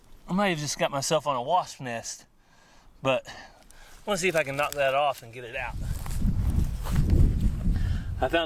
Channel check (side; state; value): both; identical; correlation 1.00